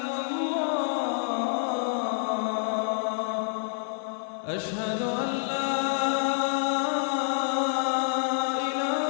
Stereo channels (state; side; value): silent; right; 59 dB below the other